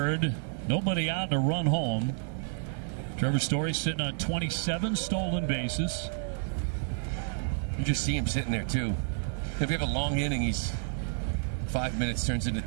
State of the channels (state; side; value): silent; left; 56 dB below the other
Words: nobody out to run home. Trevor Story sitting on 27 stolen bases. You just see him sitting there, too. If you have a long inning, he's 5 minutes turns into